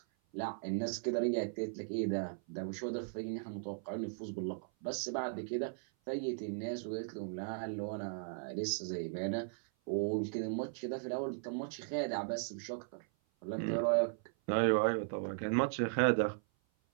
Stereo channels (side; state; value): left; silent; 53 dB below the other